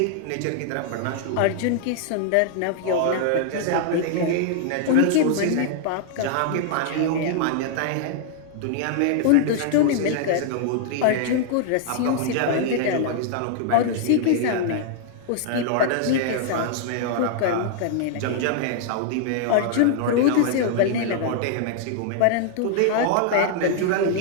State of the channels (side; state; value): both; different; correlation -0.01